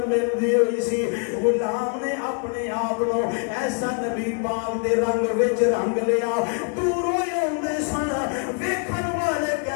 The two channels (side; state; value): right; quieter; 39.5 dB